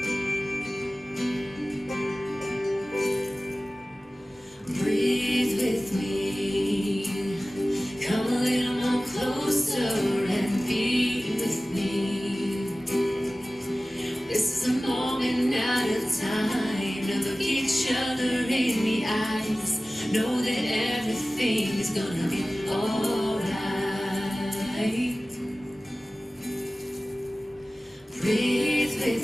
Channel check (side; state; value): both; normal; correlation 0.97